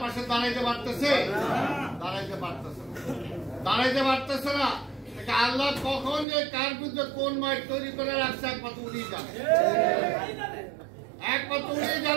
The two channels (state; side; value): drops out; left; at 6.2 s